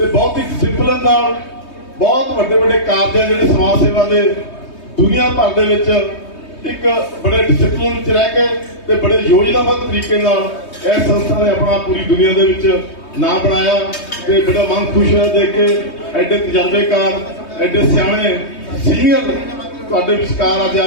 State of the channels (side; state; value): right; late; 3.2 ms